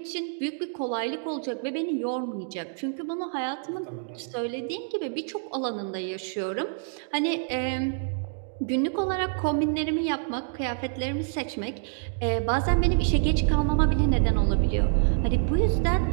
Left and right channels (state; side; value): silent; left; digital silence